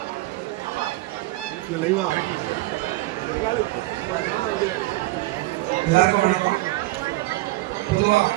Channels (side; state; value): left; quieter; 19.2 dB